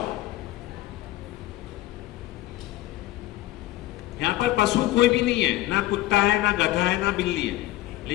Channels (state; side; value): quieter; right; 16.4 dB